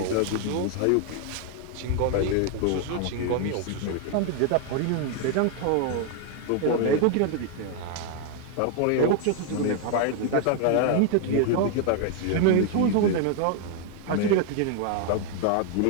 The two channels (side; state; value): both; different; correlation 0.01